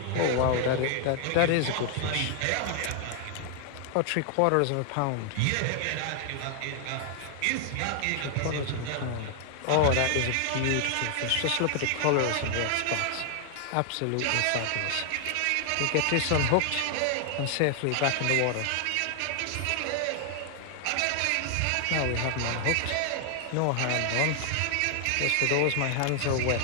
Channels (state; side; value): different; both; correlation 0.00